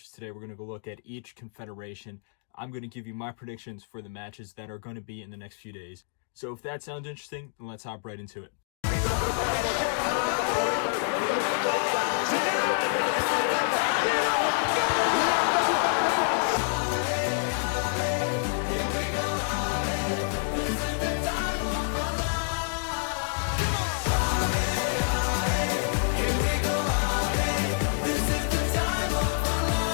Today we're going to go look at each confederation. I'm going to give you my predictions for the matches that are going to be in the next few days. So if that sounds interesting, then let's hop right into it.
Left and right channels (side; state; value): right; silent; 60 dB below the other